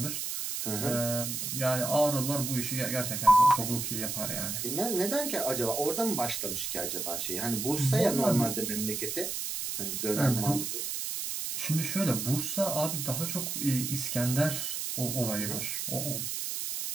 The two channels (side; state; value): right; noise; hiss, 3 dB below the sound